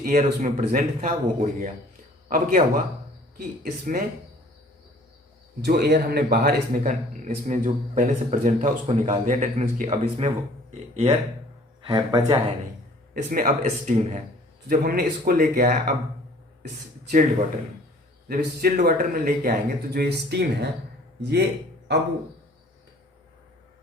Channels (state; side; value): normal; both; correlation 0.53